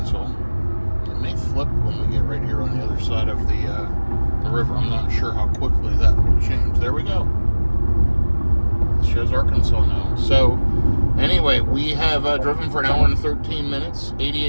It may flip when we get right here on the other side of the river. I'm not sure how quickly that will change. There we go. It shows Arkansas now. So, anyway, we have driven for an hour and 13 minutes,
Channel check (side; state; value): both; inverted; correlation -1.00